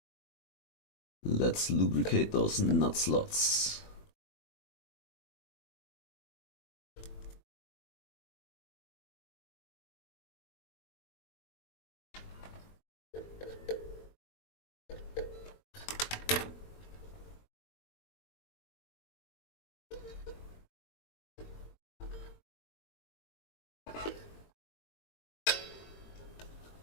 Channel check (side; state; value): right; late; 20 ms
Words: Let's lubricate those nut slots.